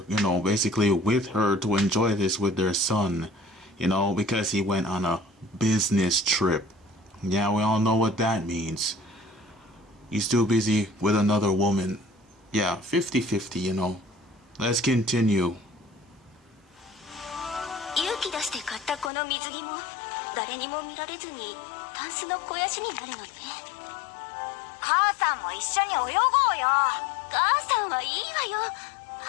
you know, basically with her to enjoy this with their son, you know, because he went on a business trip. Yeah, we all know what that means. He's too busy with another woman. Yeah, 50-50, you know. Let's continue. 勇気出して買ったこの水着も誰にも見られずにタンスの肥やしになるのね。母さんも一緒に泳ごうよ。母さんはいいわよ。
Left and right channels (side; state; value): right; drops out; at 19.1 s